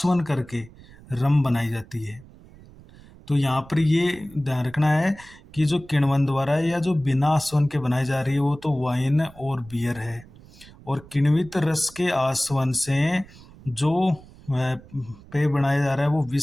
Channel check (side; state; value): right; noise; rumble, 22 dB below the sound